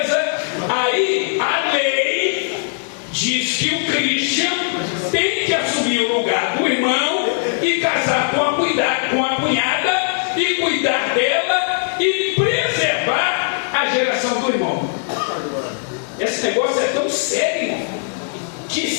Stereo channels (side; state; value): right; silent; 66 dB below the other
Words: Aí a lei diz que o Christian tem que assumir o lugar do irmão e casar com a cunhada e cuidar dela e preservar a geração do irmão. Esse negócio é tão sério que